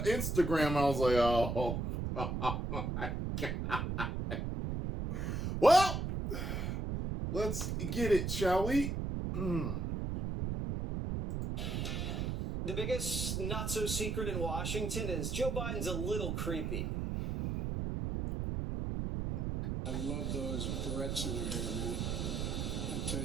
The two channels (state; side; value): noise; right; rumble, 1 dB below the sound